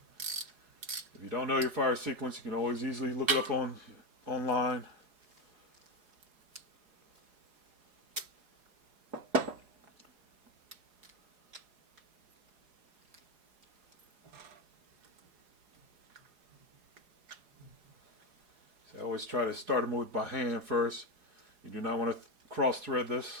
you don't know your fire sequence, you can always easily look it up online. So I always try to start them with by hand first. You do not want to cross thread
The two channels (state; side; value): late; left; 4.8 ms